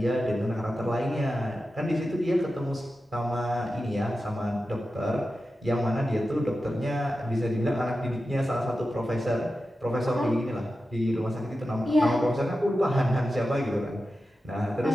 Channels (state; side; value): normal; both; correlation 0.92